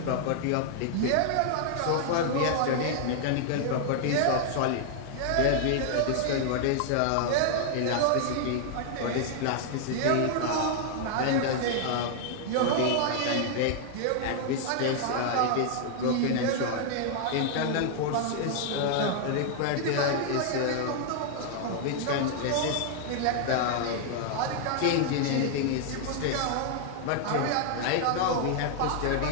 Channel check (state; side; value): different; both; correlation 0.00